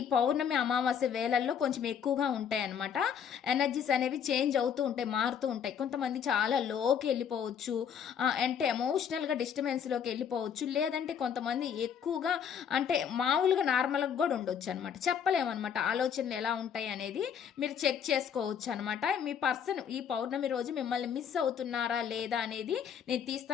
పౌర్ణమి అమావాస్య వేళల్లో కొంచెం ఎక్కువగా ఉంటాయి అనమాట. ఎనర్జీస్ అనేవి చేంజ్ అవుతూ ఉంటాయి, మారుతూ ఉంటాయి. కొంతమంది చాలా లోకి వెళ్ళిపోవచ్చు, అంటే ఎమోషనల్గా డిస్టర్బెన్స్లోకి వెళ్ళిపోవచ్చు. లేదంటే కొంతమంది ఎక్కువగా అంటే మామూలుగా నార్మల్గా కూడా ఉండొచ్చు అనమాట. చెప్పలేమన్నమాట ఆలోచనలు ఎలా ఉంటాయి అనేది మీరు చెక్ చేసుకోవచ్చు అనమాట. మీ పర్సన్ ఈ పౌర్ణమి రోజు మిమ్మల్ని మిస్ అవుతున్నారా లేదా అనేది నేను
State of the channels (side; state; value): right; quieter; 7.9 dB